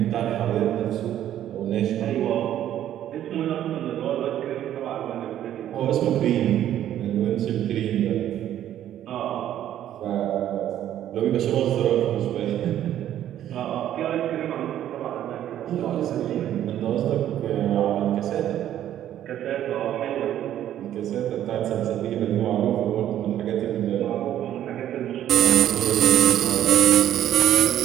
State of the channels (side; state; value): left; quieter; 11.5 dB